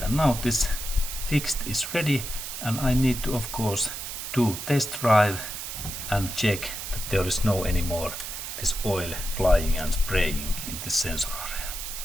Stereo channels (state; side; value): noise; right; hiss, 7 dB below the sound